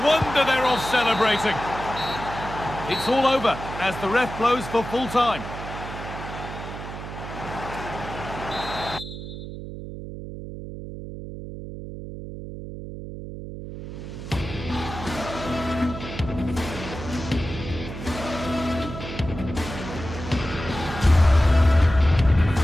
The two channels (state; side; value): noise; right; hum, 9 dB below the sound